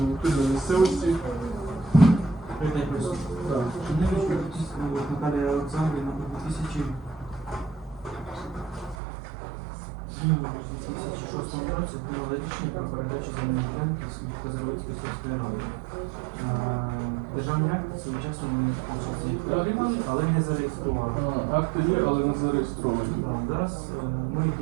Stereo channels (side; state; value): left; drops out; at 9.0 s